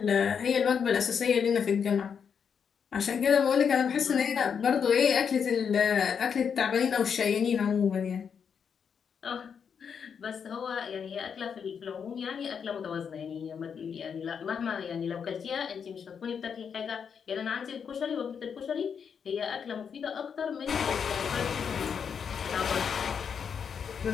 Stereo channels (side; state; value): right; quieter; 6.9 dB